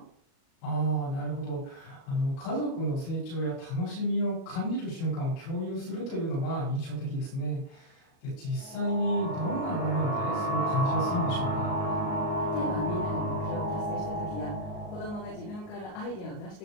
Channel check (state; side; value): late; right; 38 ms